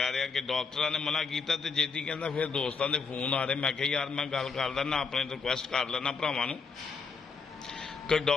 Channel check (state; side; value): quieter; right; 5.0 dB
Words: रहा कि डॉक्टरां ने मना किया तो जेती कहंदा फिर दोस्तां दे फोन आ रहे। मैं कहा यार मैं गल कर लैना, अपने रिक्वेस्ट कर लैना भरावां नूं कि